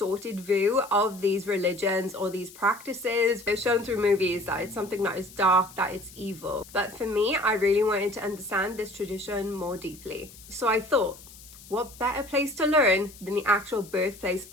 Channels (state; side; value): noise; left; hiss, 20 dB below the sound